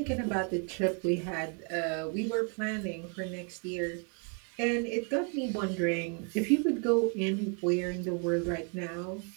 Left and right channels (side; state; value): left; quieter; 37.8 dB